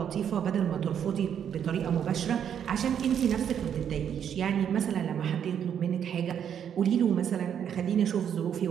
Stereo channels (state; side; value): quieter; left; 8.7 dB